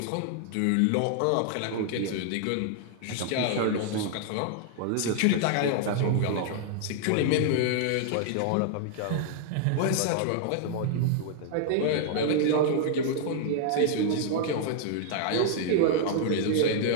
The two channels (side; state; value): both; different; correlation -0.01